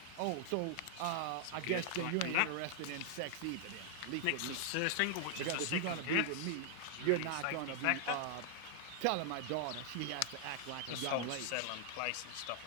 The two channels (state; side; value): different; both; correlation 0.00